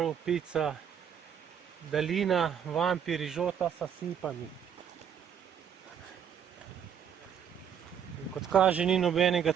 pica, dalina, vampi, rižota s sipami. Kot kaže, ni nobenega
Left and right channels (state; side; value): quieter; left; 8.3 dB